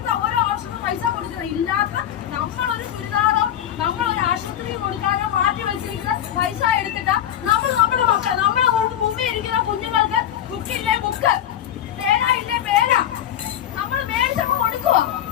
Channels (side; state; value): right; quieter; 10.8 dB